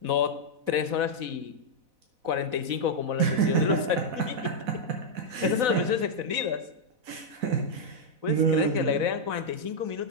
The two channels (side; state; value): left; late; 4.0 ms